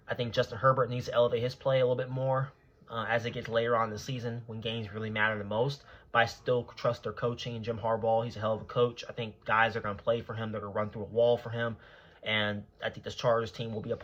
I think Justin Herbert needs to elevate his play a little bit more as it gets later on in the season when games really matter the most. But I still trust their coaching. Jim Harbaugh, he's a hell of a coach. I think guys are going to play for him. They're going to run through a wall for him. And I think this Chargers team will be a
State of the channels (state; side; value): identical; both; correlation 1.00